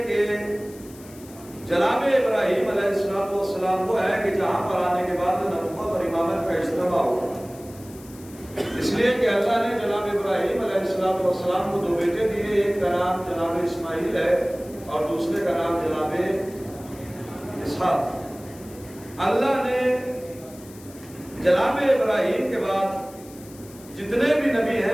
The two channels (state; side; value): noise; left; hiss, 21 dB below the sound